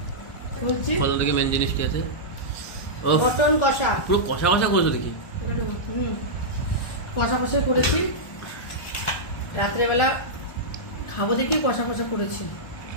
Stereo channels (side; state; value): right; late; 1.1 ms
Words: বলছি কত থেকে মেন জিনিস কি আছে? ও মটন কষা, পুরো কষা কষা করেছো দেখি। কষা কষা করেছি, রাত্রেবেলা খাবো দেখি কষা কষা করেছি।